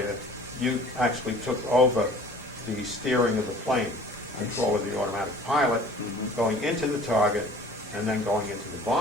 you actually took over the steering of the plane, control of the automatic pilot, going into the target, and then going into the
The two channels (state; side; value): normal; both; correlation 0.47